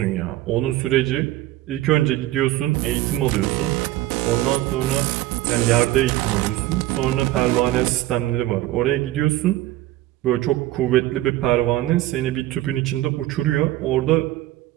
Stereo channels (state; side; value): quieter; left; 15.9 dB